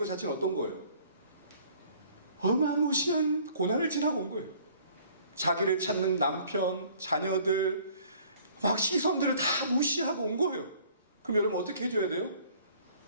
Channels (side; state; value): both; inverted; correlation -0.55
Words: 자체는 어떤 거예요? 어마무시한 고난을 지나고 온 거예요. 자기를 찾는 남편, 자녀들, 막 시선들을 다 무시하고 온 거예요. 그럼 여러분 어떻게 해줘야 돼요?